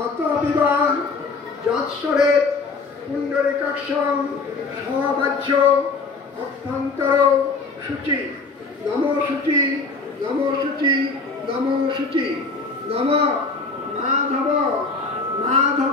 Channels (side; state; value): right; quieter; 4.2 dB